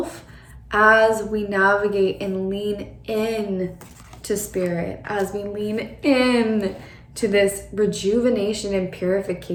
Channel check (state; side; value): identical; both; correlation 1.00